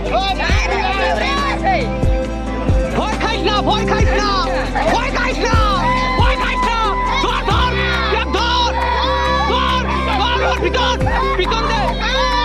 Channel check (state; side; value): identical; both; correlation 1.00